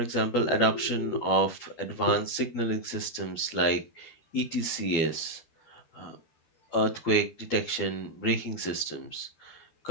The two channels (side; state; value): right; late; 12 ms